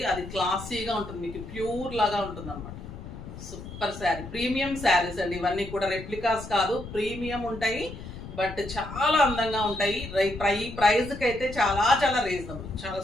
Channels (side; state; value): left; noise; rumble, 12 dB below the sound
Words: అది క్లాసీగా ఉంటుంది, మీకు ప్యూర్ లాగా ఉంటుంది అనమాట. సూపర్ శారీ, ప్రీమియం శారీస్ అండి ఇవన్నీ కూడా. రెప్లికాస్ కాదు, ప్రీమియం ఉంటాయి, బట్ చాలా అందంగా ఉంటాయి. ప్రైస్కి అయితే చాలా చాలా రీజనబుల్, చాలా